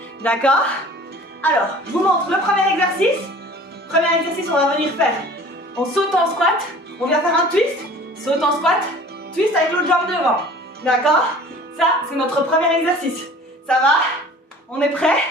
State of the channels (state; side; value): normal; both; correlation 0.46